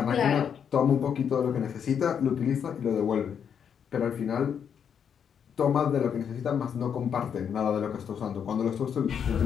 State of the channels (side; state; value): right; quieter; 7.8 dB